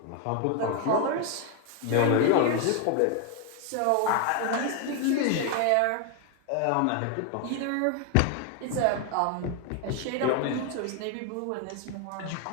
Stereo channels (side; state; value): both; different; correlation 0.01